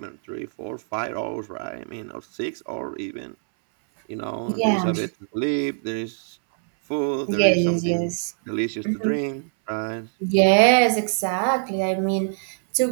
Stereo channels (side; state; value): left; silent; 63 dB below the other